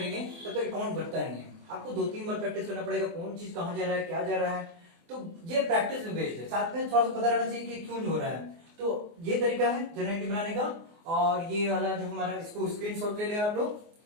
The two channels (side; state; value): left; late; 24 ms